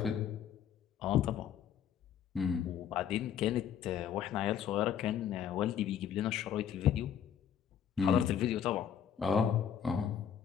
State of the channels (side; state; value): right; quieter; 8.9 dB